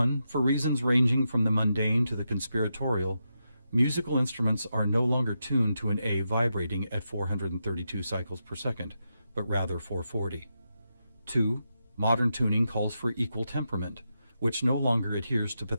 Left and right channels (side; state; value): both; inverted; correlation -0.86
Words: for reasons ranging from the mundane to the conspiratorial, musical instruments are no longer tuned to an A vibrating at 432 cycles per second, but rather 440. 2, modern tuning calls for equal temperament, which no longer adheres to